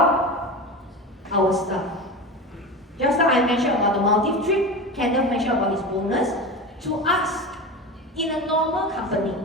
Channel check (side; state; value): both; normal; correlation 0.27